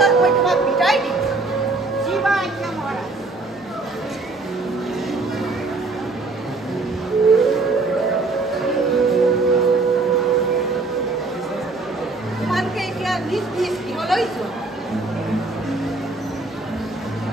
মই তোমাক বিদায় দিম। জীৱা আজ্ঞা মহাৰাজ। তোমালোকে এতিয়া নিজ নিজ গৃহলৈ যোৱা।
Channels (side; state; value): left; quieter; 3.5 dB